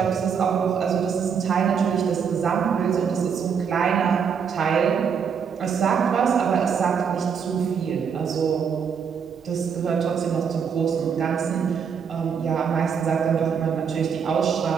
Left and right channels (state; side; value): quieter; left; 6.8 dB